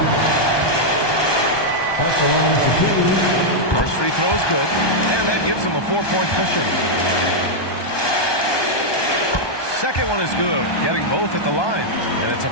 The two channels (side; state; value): right; late; 1.2 ms